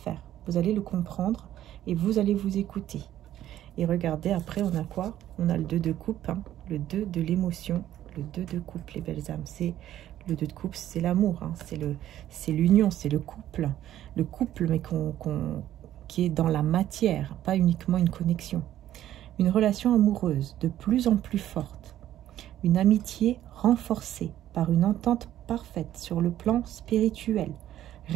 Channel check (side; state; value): left; quieter; 12.4 dB